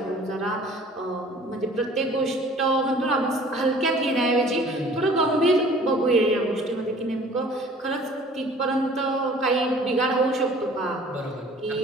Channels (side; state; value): both; normal; correlation 0.50